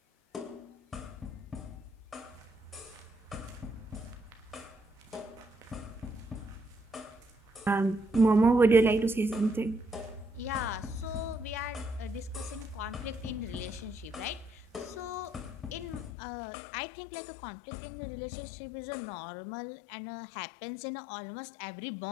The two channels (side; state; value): right; drops out; at 16.1 s